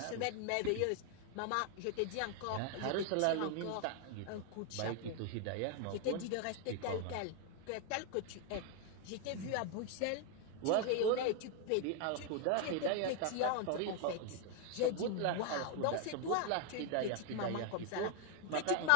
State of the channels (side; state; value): both; different; correlation 0.01